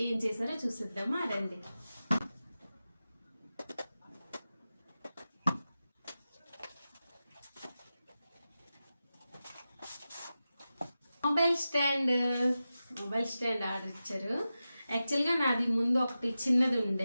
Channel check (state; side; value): inverted; both; correlation -0.93